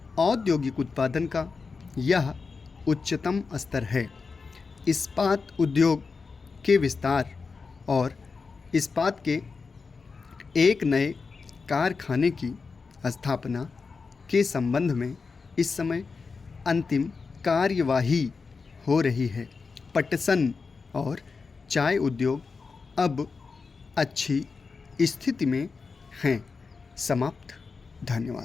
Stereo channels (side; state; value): right; quieter; 4.7 dB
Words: औद्योगिक उत्पादन का यह उच्चतम स्तर है। इस्पात उद्योग के विस्तार और इस्पात के एक नए कारखाने की स्थापना के संबंध में इस समय अंतिम कार्यवाही हो रही है। पटसन और चाय उद्योग अब अच्छी स्थिति में हैं। समाप्त।